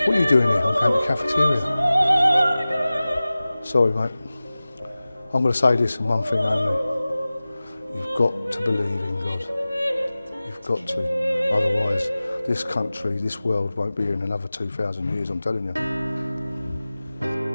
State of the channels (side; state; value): both; inverted; correlation -0.97